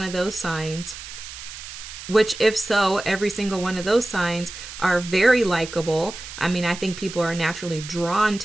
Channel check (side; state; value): right; noise; hiss, 12 dB below the sound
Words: of those signs. Which, if so, every single one of those signs are very likable. I mean, I think people are naturally drawn